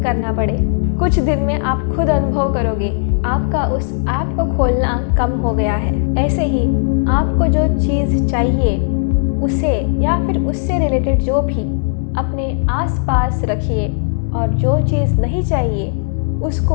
करना पड़े। कुछ दिन में आप खुद अनुभव करोगे आपका उस ऐप को खोलना कम हो गया है। ऐसे ही आपको जो चीज़ चाहिए उसे या फिर उससे रिलेटेड जो भी अपने आसपास रखिए और जो चीज़ नहीं चाहिए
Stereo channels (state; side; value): silent; right; digital silence